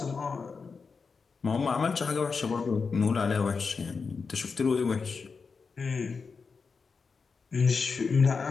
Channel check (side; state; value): right; quieter; 5.0 dB